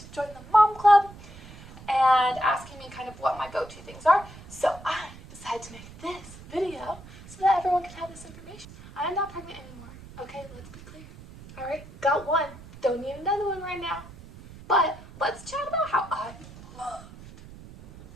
join the mom club and asking me kind of what my go-to things are. So I decided to make this video so that everyone can have this information. I am not pregnant anymore. Okay, let's be clear. Alright, got one. Don't need another one right now. But let's chat about how I loved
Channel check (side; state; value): right; noise; rumble, 18 dB below the sound